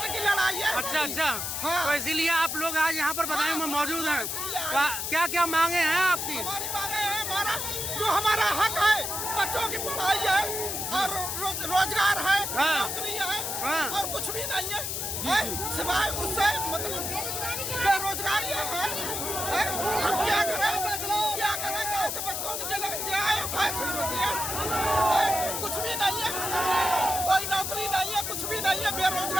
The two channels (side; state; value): left; noise; hiss, 3 dB below the sound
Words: की लड़ाई है। अच्छा हाँ। तो इसीलिए आप लोग आज यहाँ पर बदायूं में मौजूद हैं। क्या क्या मांगे हैं आपकी? हमारी मांगे हैं, हमारा हक है, बच्चों की पढ़ाई है और रोजगार है, नौकरी है और कुछ भी नहीं है, सिवाय उससे मतलब बेरोजगारी है। हम क्या करें कैसे बच्चों की कुछ भी नहीं है, कोई नौकरी नहीं है, कुछ भी नहीं है,